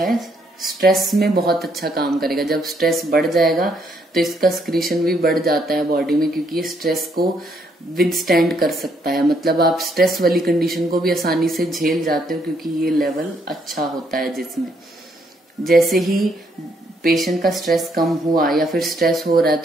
स्ट्रेस में बहुत अच्छा काम करेगा। जब स्ट्रेस बढ़ जाएगा तो इसका स्क्रीशन भी बढ़ जाता है बॉडी में, क्योंकि ये स्ट्रेस को विदस्टैंड कर सकता है, मतलब आप स्ट्रेस वाली कंडीशन को भी आसानी से झेल जाते हो, क्योंकि ये लेवल अच्छा होता है जिसमें। जैसे ही पेशेंट का स्ट्रेस कम हुआ या फिर स्ट्रेस हो रहा है,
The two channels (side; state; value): both; normal; correlation 0.72